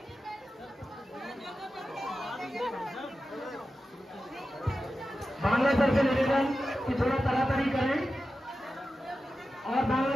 बांग्ला सर से निवेदन कि थोड़ा तड़ातड़ी करें और बांग्ला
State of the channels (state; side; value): normal; both; correlation 0.92